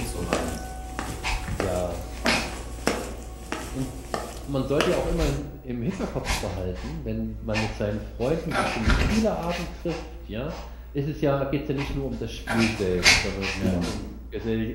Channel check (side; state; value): both; identical; correlation 1.00